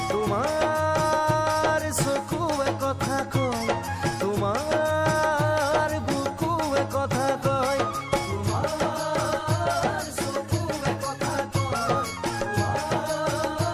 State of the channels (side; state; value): both; identical; correlation 1.00